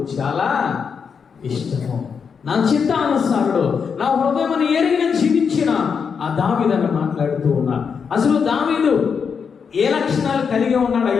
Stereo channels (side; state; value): right; quieter; 6.3 dB